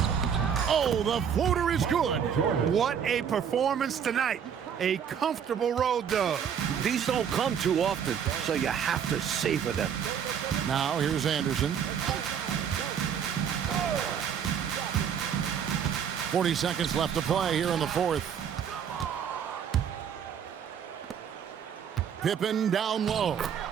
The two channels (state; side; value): quieter; left; 8.0 dB